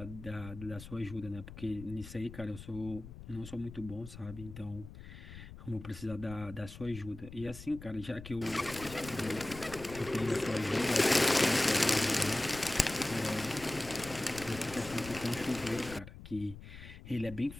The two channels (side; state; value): left; noise; rumble, 14 dB below the sound